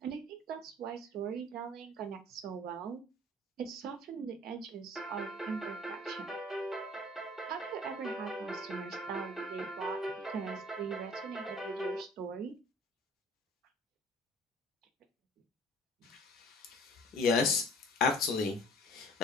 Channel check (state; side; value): normal; both; correlation 0.51